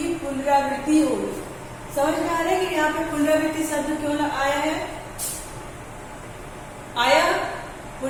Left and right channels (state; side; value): identical; both; correlation 1.00